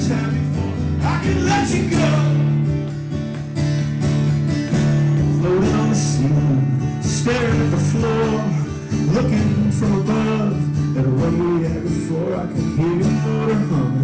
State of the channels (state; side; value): identical; both; correlation 1.00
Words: time before I can let you go. Floating on the ceiling, staring at the floor, looking from above at a one we had before. I could hear your motor